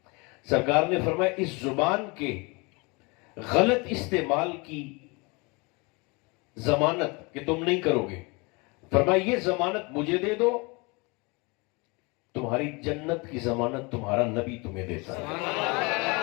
سرکار نے فرمایا اس زبان کے غلط استعمال کی ضمانت کہ تم نہیں کرو گے، فرمایا یہ ضمانت مجھے دے دو، تمہاری جنت کی ضمانت تمہارا نبی تمہیں دیتا ہے.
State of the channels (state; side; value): quieter; right; 28.0 dB